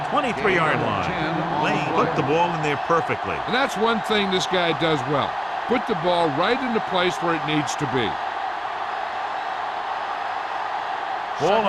23-yard line. Lane put the ball in there perfectly. And that's one thing this guy does well. Put the ball right in the place where it needs to be. Ball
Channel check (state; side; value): identical; both; correlation 1.00